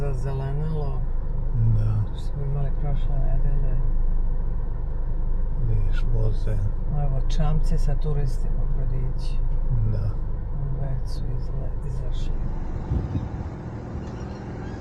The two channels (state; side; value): identical; both; correlation 1.00